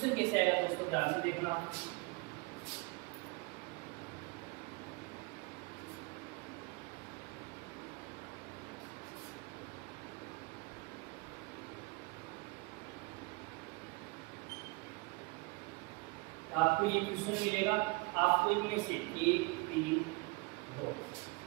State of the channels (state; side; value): quieter; left; 27.0 dB